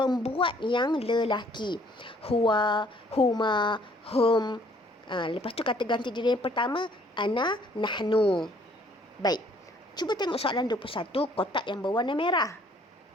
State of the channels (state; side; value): normal; both; correlation 0.61